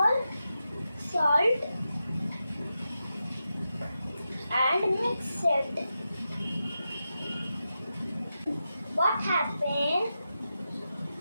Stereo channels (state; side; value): inverted; both; correlation -0.89